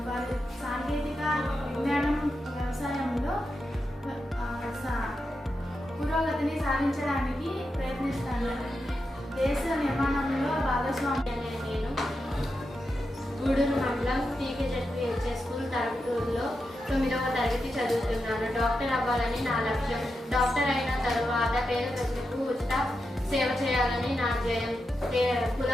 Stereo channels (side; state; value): both; normal; correlation 0.88